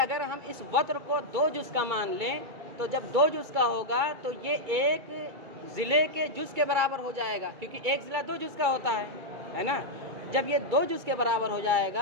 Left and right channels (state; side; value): late; left; 2.3 ms